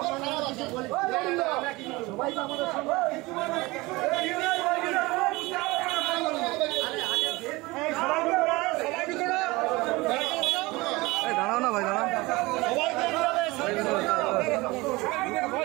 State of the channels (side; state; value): left; quieter; 22.2 dB